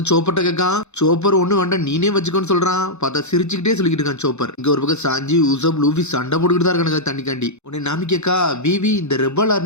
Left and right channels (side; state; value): right; late; 0.82 ms